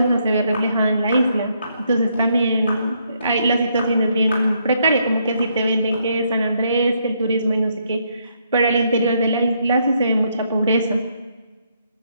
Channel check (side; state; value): both; inverted; correlation -0.74